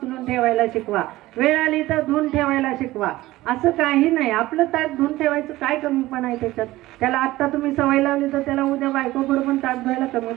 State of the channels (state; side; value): quieter; left; 17.4 dB